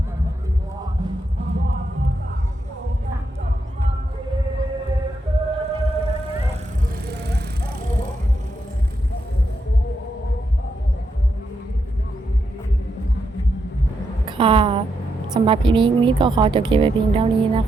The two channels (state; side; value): normal; both; correlation 0.82